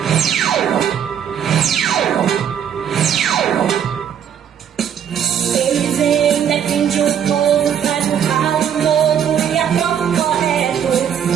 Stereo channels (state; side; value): quieter; left; 8.7 dB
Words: Eles ainda defendem o povo, faz um ralo novo e aprova o correto.